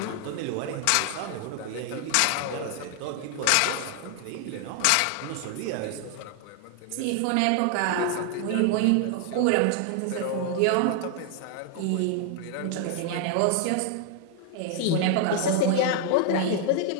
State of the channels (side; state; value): both; different; correlation 0.00